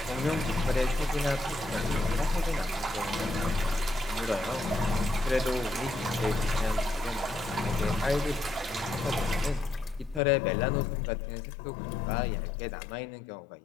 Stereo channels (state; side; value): drops out; right; at 10.2 s